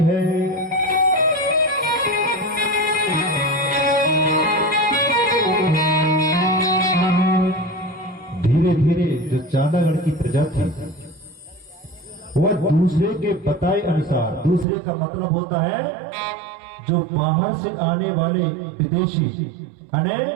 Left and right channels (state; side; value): drops out; left; at 14.7 s